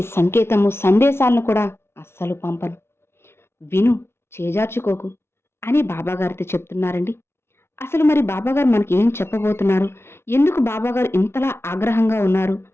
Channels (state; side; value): late; right; 0.12 ms